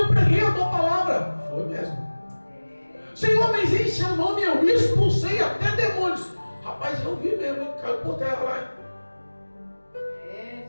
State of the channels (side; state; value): both; inverted; correlation -1.00